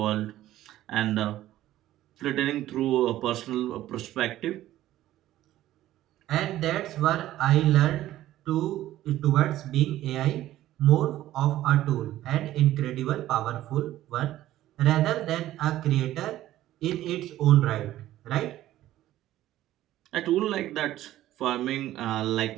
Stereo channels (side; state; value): left; quieter; 14.1 dB